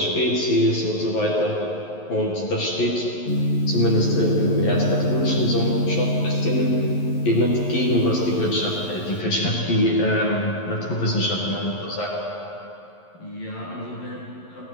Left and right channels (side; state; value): right; late; 11 ms